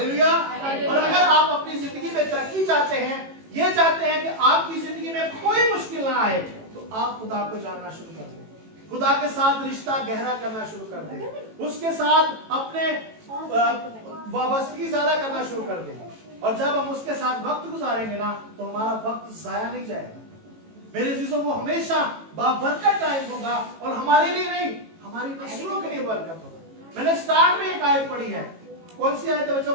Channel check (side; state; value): left; late; 18 ms